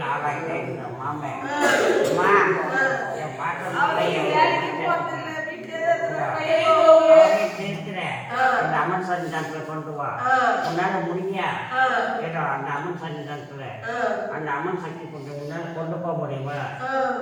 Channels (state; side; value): identical; both; correlation 1.00